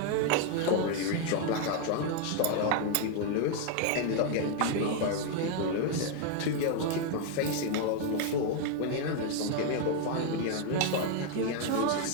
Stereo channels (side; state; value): both; different; correlation 0.01